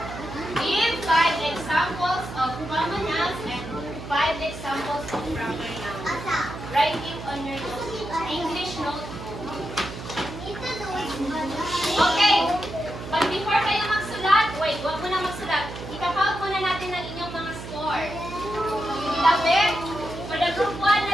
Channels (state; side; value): noise; right; hum, 10 dB below the sound